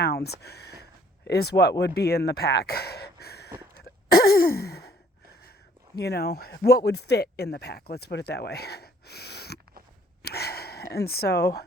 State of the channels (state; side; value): normal; both; correlation 0.61